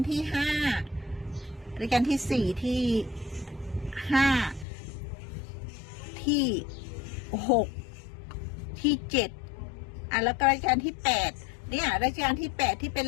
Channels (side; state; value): right; drops out; at 4.7 s